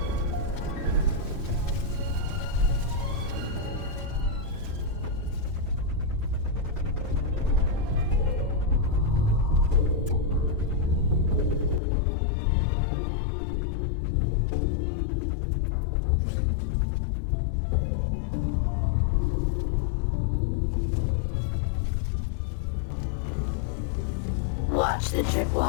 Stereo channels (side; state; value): right; drops out; at 11.8 s